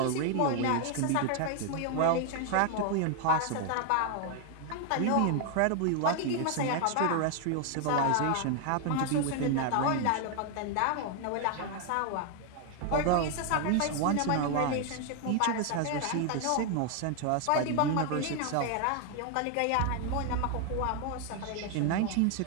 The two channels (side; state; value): both; different; correlation 0.00